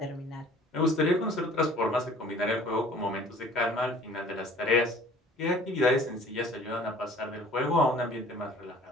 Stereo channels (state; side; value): normal; both; correlation 0.51